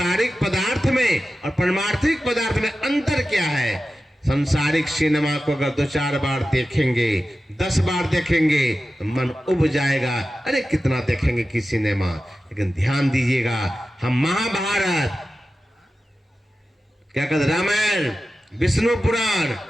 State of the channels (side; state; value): both; normal; correlation 0.93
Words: पदार्थ में और परमार्थिक पदार्थ में अंतर क्या है। संसारिक सिनेमा को अगर 2-4 बार देखेंगे, 10 बार देखेंगे तो मन उब जाएगा, अरे कितना देखेंगे कि सिनेमा। लेकिन ध्यान दीजिएगा, हम महाभारत, क्या कहते, रामायण, विष्णु पुराण,